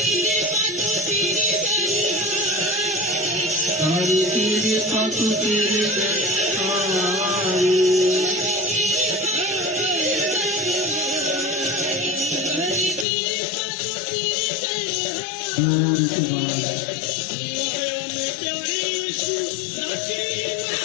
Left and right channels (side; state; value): right; drops out; at 13.1 s